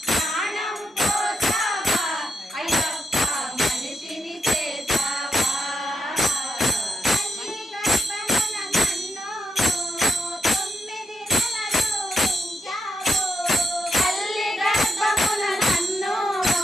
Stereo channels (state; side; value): normal; both; correlation 0.82